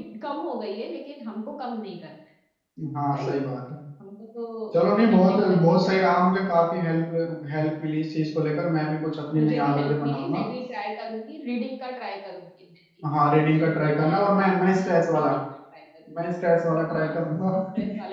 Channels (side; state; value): both; identical; correlation 1.00